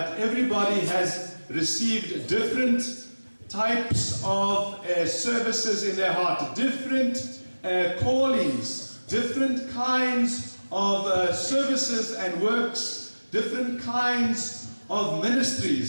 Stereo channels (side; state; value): both; inverted; correlation -1.00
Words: everybody has received different types of services in their heart, different callings, different kinds of services and works, different kinds of